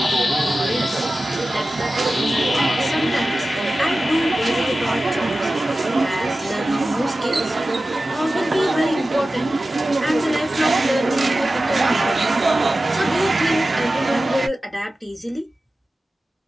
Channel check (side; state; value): both; normal; correlation 0.95